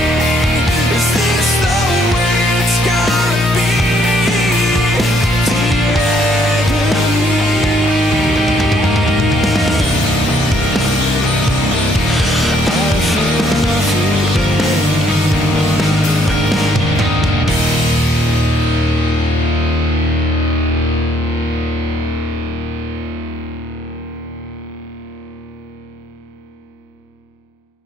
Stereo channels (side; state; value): both; normal; correlation 0.67